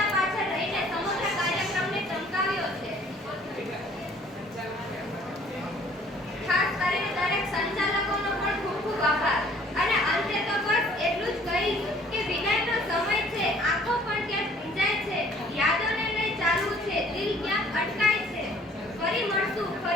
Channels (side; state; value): both; normal; correlation 0.56